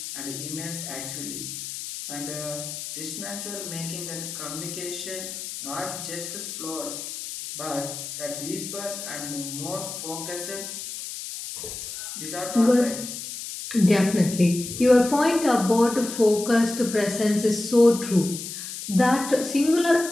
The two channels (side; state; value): left; noise; hiss, 8 dB below the sound